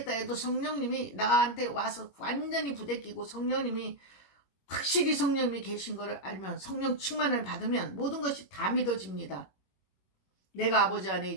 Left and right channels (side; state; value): right; late; 21 ms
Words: 해도 성령님이 나한테 와서 완전히 부대끼고 성령님이 확실히 성령님이 계신 것을 알면, 성령 충만을 받으면 모든 것이 다 믿어집니다. 내가 아버지 안에